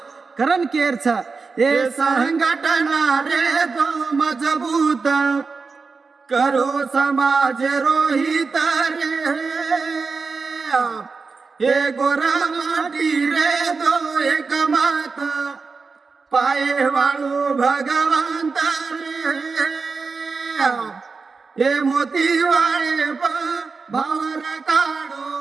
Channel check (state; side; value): quieter; left; 4.6 dB